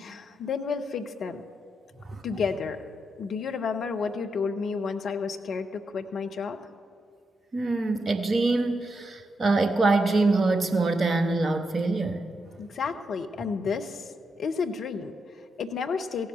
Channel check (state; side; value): normal; both; correlation 0.83